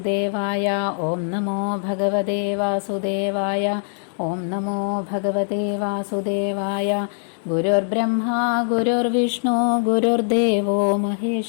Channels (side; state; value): right; silent; digital silence